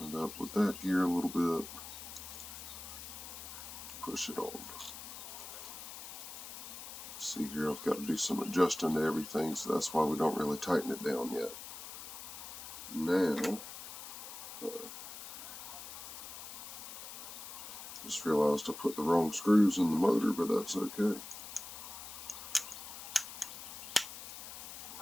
it up with that gear a little bit. Push it on. See here, I've got to do some adjusting to everything, so that's why we don't really tighten it down yet. Now, just realized I put the wrong screws in the motor, but that's okay.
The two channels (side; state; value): left; noise; hiss, 10 dB below the sound